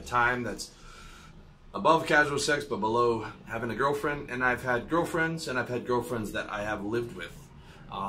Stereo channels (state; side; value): identical; both; correlation 1.00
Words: time that's above casual sex but below having a girlfriend. And I've had girlfriends, and I've had girlfriends that I have lived with,